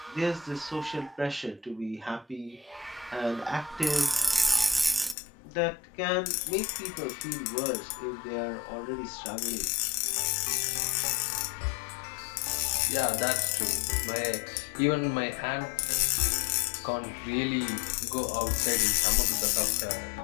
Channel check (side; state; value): right; drops out; at 5.2 s